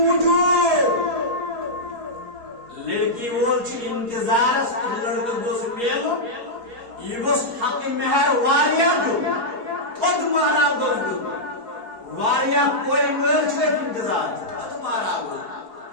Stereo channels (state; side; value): late; left; 4.3 ms